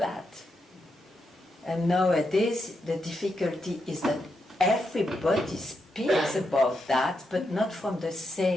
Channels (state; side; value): normal; both; correlation 0.83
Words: And nowadays, the difficulty is that everybody speaks about that, but not from the